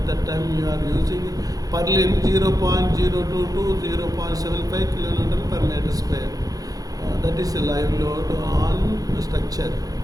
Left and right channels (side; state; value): left; late; 0.18 ms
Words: that time you are using purlin 0.02 to 0.75 kN per meter square. That is a live load on structure,